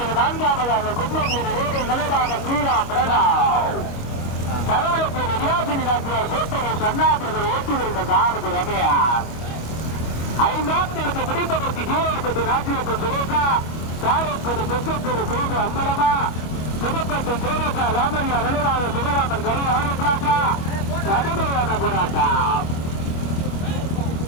நான்காவதாக கும்பங்குடி ரோடு நிலைவாக கீழா பிரணாவ் கடவுளுக்கு ரியாசினி நாச்சியார் கோட்டையூர் கண்ணாபிரதர் ஓட்டி வருகின்ற சாரதி ரமேஷ் ஐந்தாம் தேதி பிடிப்பதற்கு கீழே ராஜ்யப்பன் சுரேகா சாரக்குடி தெற்கத்தூர் சேது அம்பலமா புதுப்பட்டி சேரக்கா ராமையா நினைவாக சிவராமன் கலை ஆரம்பிக்கலாக்கா கடுமையான போராட்டம்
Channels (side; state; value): right; late; 25 ms